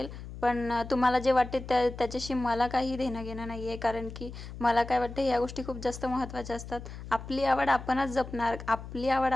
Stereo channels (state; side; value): noise; left; hum, 11 dB below the sound